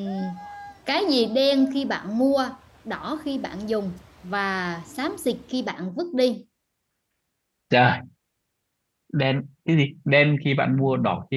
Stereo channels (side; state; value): both; identical; correlation 1.00